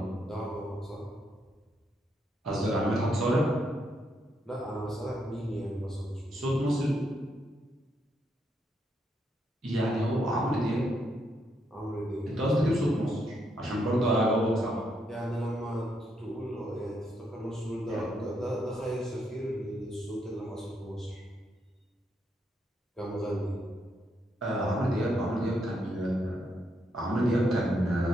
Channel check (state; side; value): normal; both; correlation 0.78